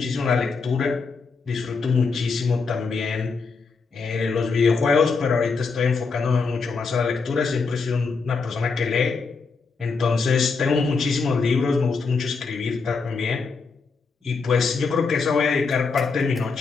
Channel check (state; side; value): quieter; right; 4.7 dB